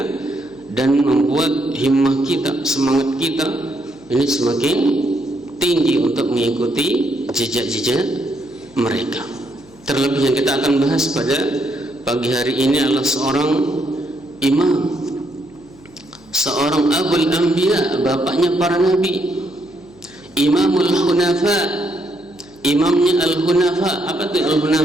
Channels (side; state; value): left; noise; hum, 27 dB below the sound